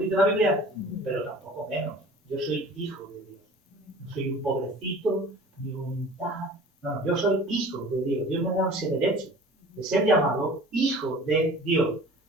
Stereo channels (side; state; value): both; normal; correlation 0.44